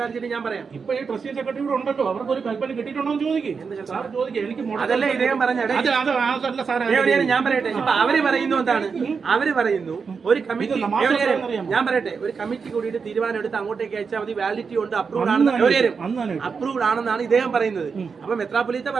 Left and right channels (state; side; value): quieter; left; 5.5 dB